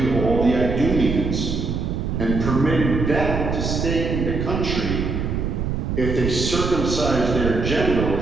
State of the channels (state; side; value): noise; right; rumble, 2 dB below the sound